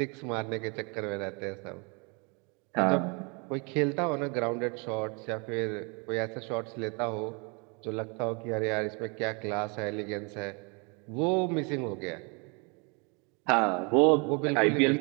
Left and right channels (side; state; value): left; quieter; 32.5 dB